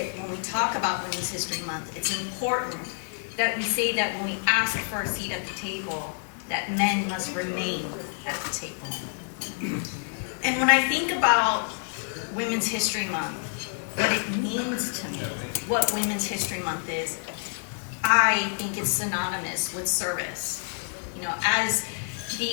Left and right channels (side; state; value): right; silent; 60 dB below the other